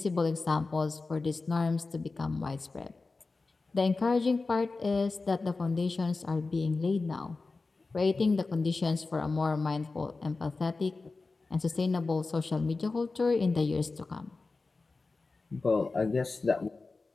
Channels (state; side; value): quieter; right; 3.8 dB